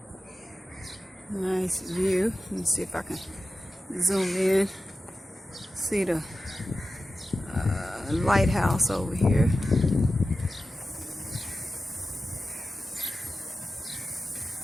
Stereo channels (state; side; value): normal; both; correlation 0.93